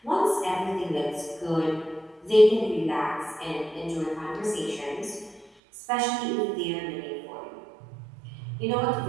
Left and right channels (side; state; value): left; drops out; at 5.5 s